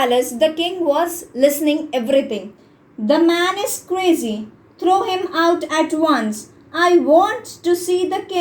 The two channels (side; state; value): both; identical; correlation 1.00